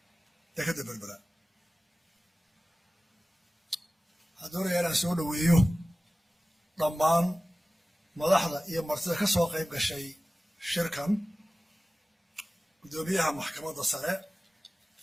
تكذب بالبلا هذول أنا سوون وياه ضمان ملاحظة هي مرتبة كسوق يبقى شيء شركة قدوميها محكمة الصلاة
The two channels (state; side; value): normal; both; correlation 0.97